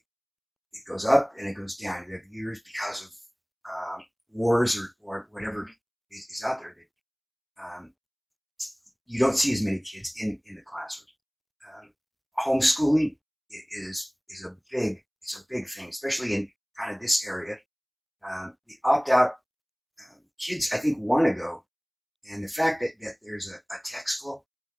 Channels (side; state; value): both; identical; correlation 1.00